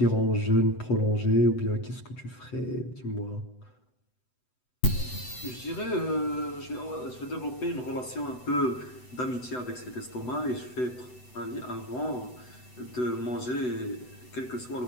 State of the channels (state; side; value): late; right; 8.0 ms